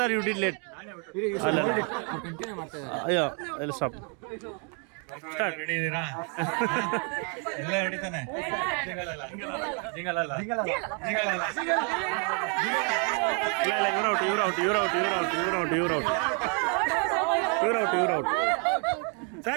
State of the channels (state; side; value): quieter; left; 38.1 dB